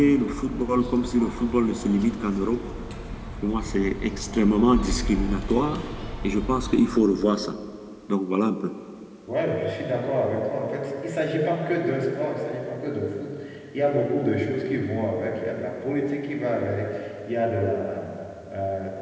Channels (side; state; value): both; identical; correlation 1.00